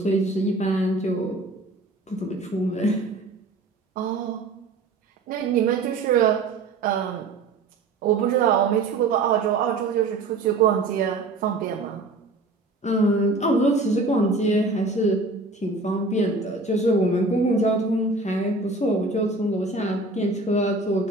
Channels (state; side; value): quieter; left; 3.3 dB